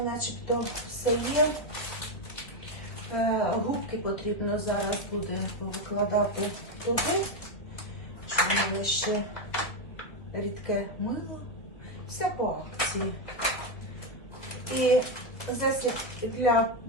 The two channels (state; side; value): late; right; 2.3 ms